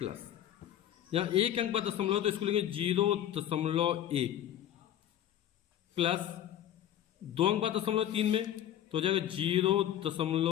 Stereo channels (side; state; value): right; quieter; 11.4 dB